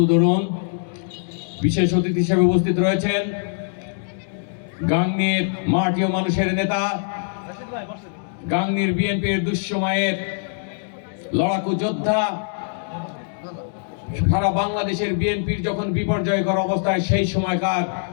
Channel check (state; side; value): silent; right; digital silence